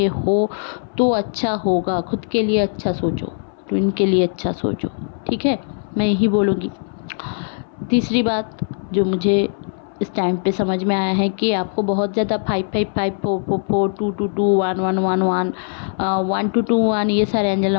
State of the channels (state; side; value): silent; right; 60 dB below the other